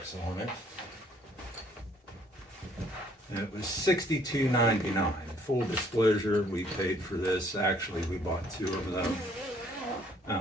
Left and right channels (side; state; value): both; normal; correlation 0.62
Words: on it. And it was $62.99. Full disclosure, we paid for this. Actually, we bought two of them.